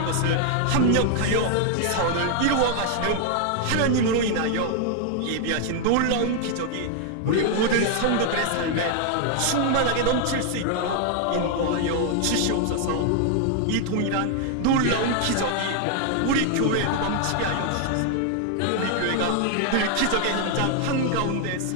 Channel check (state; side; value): different; both; correlation 0.00